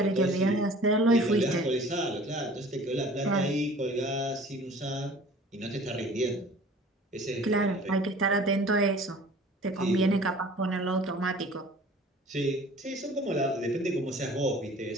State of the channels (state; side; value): normal; both; correlation 0.47